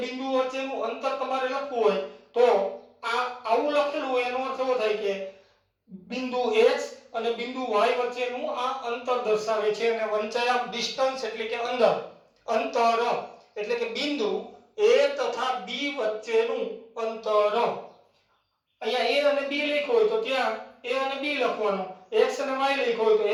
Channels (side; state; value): both; identical; correlation 1.00